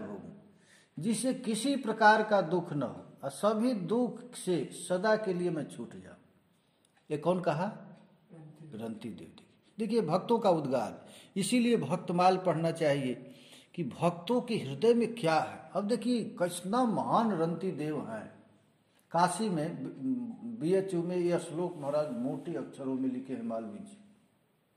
जिससे किसी प्रकार का दुख न हो और सभी दुख से सदा के लिए मैं छूट जाऊं। ये कौन कहा? रंती देव। देखिए भक्तों का उद्गार, इसीलिए भक्तमाल पढ़ना चाहिए कि भक्तों के हृदय में क्या है। अब देखिए कितना महान रंती देव हैं। काशी में BHU में यह श्लोक महाराज मोटे अक्षरों में लिखे हैं मालवीय जी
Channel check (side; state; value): both; identical; correlation 1.00